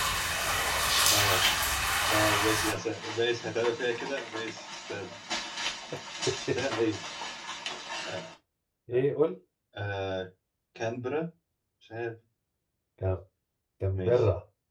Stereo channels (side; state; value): both; identical; correlation 1.00